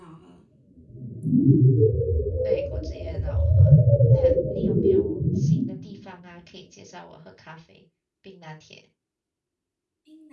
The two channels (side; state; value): both; identical; correlation 1.00